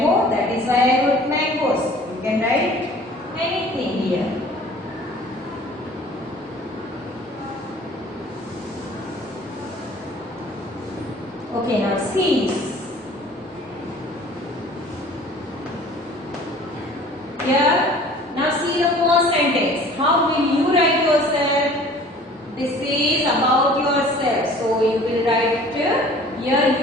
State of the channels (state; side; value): normal; both; correlation 0.48